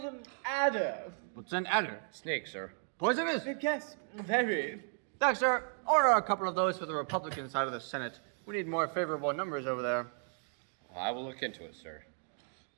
adder. What's an adder? Snake, sir. Poisonous? Yes, very. Thanks, sir. Order a couple of those for the Republican side of the Senate. We need more favorable numbers over there. I will look into it, sir.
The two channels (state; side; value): silent; left; 55 dB below the other